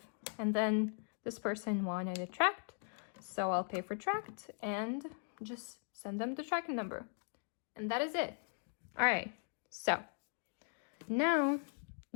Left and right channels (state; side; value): silent; right; 52 dB below the other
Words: and then this person wanted it tracked, so I'll pay for tracked and just send them the tracking number. And that is it. All right, so now